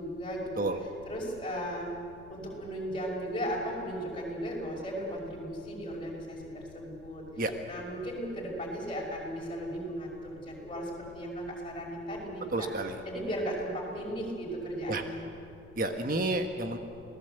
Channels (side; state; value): left; noise; rumble, 17 dB below the sound